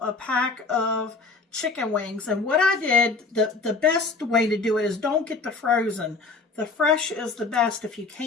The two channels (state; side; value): quieter; right; 4.1 dB